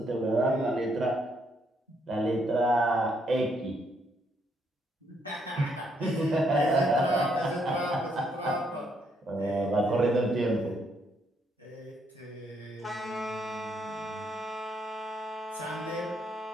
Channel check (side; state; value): both; normal; correlation 0.73